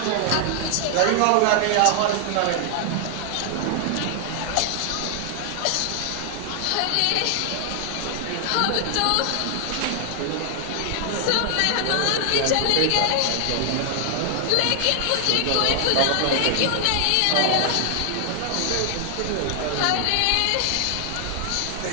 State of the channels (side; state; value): both; different; correlation 0.00